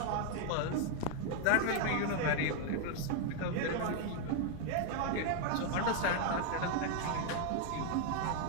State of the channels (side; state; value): both; different; correlation 0.00